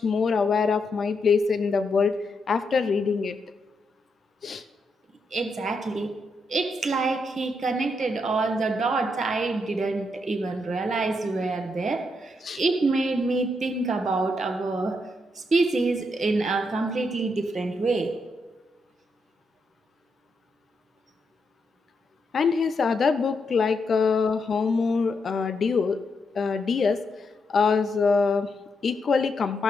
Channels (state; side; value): normal; both; correlation 0.81